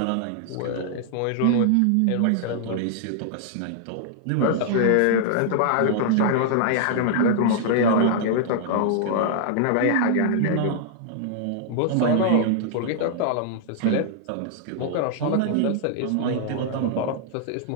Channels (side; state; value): both; different; correlation -0.01